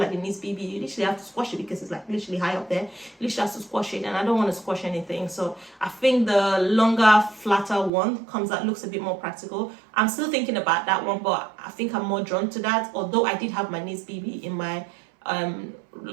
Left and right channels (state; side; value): drops out; left; at 7.9 s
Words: the Nice BB, you literally have to squash it, because it's like literally high up there. You literally have to squash it, and I don't want to squash anything. So I think the longer, flatter one looks a bit more practical. I'm still thinking about that one, but I think I'm more drawn to that. Although I did have my Nice BB in my